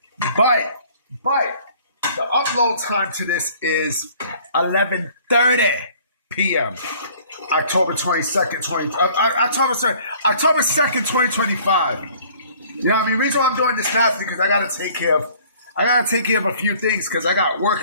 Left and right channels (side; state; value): both; inverted; correlation -0.54